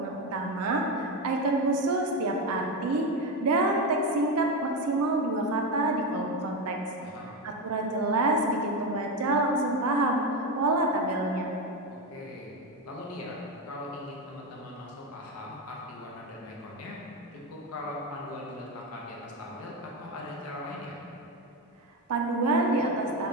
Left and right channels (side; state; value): both; normal; correlation 0.14